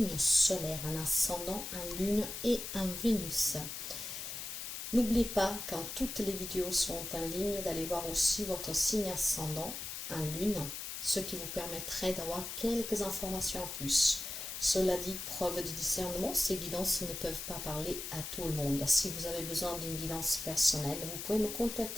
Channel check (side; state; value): left; noise; hiss, 7 dB below the sound